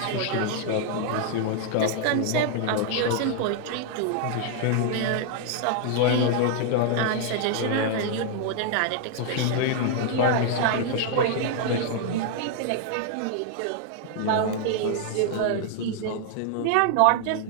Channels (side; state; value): both; different; correlation 0.00